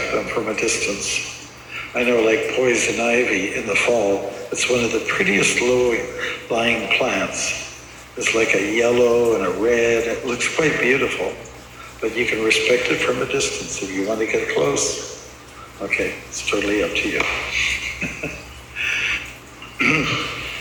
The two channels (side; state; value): both; identical; correlation 1.00